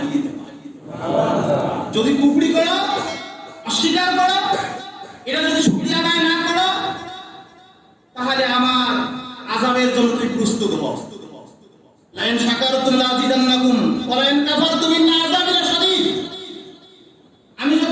দেব। যদি কুফরি করো, অস্বীকার করো, এটা যদি শুকরিয়া আদায় না করো, তাহলে আমার আযাবের জন্য তুমি প্রস্তুত হও। লাইন শাকারতুম লাযিদান্নাকুম ওয়া লাইন কাফারতুম ইন্না আযাবি লাশাদীদ। আমি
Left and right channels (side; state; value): both; identical; correlation 1.00